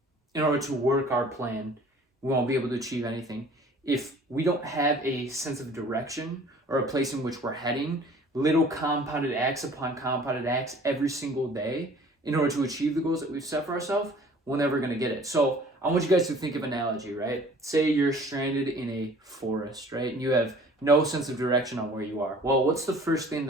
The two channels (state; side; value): normal; both; correlation 0.51